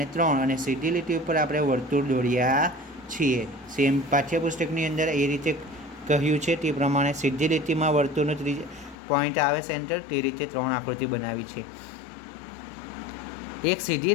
3, અને સીધી લીટી ઉપર આપણે વર્તુળ દોર્યા છીએ. સેમ પાઠ્યપુસ્તકની અંદર એ રીતે કહ્યું છે તે પ્રમાણે સીધી લીટીમાં વર્તુળનો પોઈન્ટ આવે સેન્ટર, તે રીતે 3 આકૃતિ બનાવી છે. એક સીધી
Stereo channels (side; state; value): right; drops out; at 9.0 s